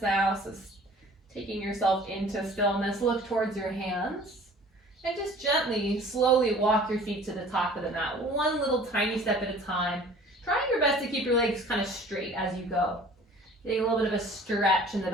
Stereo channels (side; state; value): both; normal; correlation 0.48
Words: now. So taking yourself into stillness, look towards your hands. And just gently, slowly walk your feet to the top of the mat. One little tiny step at a time. Trying your best to keep your legs kind of straight as you go. Getting a little bit of a stretch in the